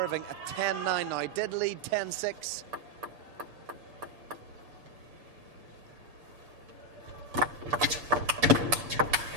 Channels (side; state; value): left; late; 6.8 ms